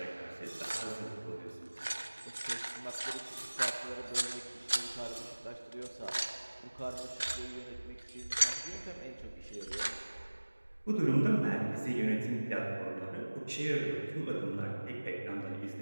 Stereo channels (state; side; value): inverted; both; correlation -1.00